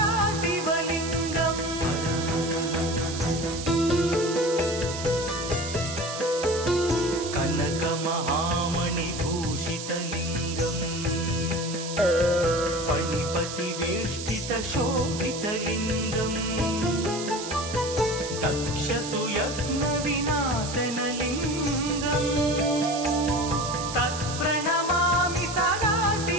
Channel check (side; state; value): right; noise; hiss, 8 dB below the sound